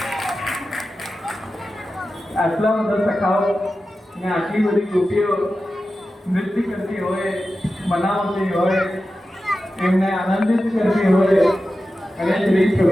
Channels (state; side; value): normal; both; correlation 0.93